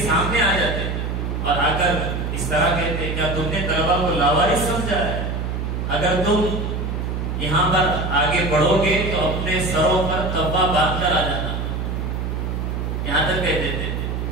سامنے آ جاتے اور آ کر اس طرح کہتے کیا تم نے طلبہ کو لاوارث سمجھا ہے؟ اگر تم یہاں پر آگے بڑھو گے تو اپنے سروں پر قبا باندھ کر آ جانا. یہاں تک کہتے تھے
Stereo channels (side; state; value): right; noise; hum, 2 dB below the sound